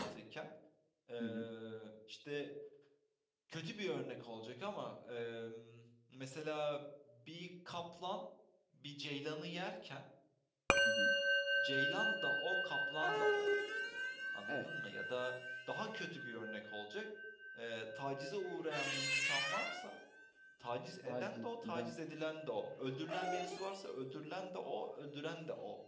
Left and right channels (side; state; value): both; identical; correlation 1.00